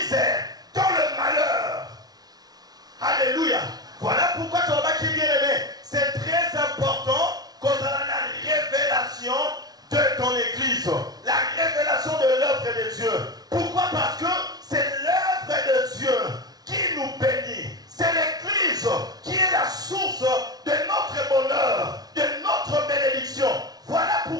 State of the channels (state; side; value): late; left; 0.19 ms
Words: dans le malheur. Alléluia. Voilà pourquoi ton qui bien aimé, c'est très important qu'on a la révélation de ton église, la révélation de l'œuvre de Dieu. Pourquoi? Parce que c'est l'œuvre de Dieu qui nous bénit. C'est l'église qui est la source de notre bonheur, de notre bénédiction. Voilà